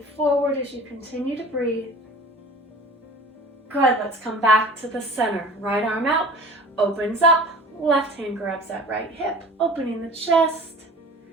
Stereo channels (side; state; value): both; normal; correlation 0.42